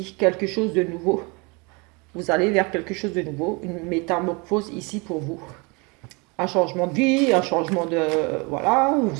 quelque chose de nouveau. Vous allez vers quelque chose de nouveau, une métamorphose ici pour vous. Un changement de vie, un changement de... Voilà,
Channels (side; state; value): left; quieter; 28.9 dB